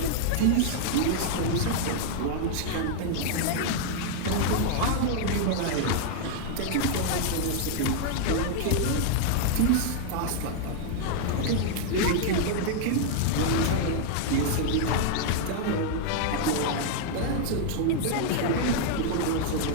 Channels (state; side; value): different; both; correlation 0.00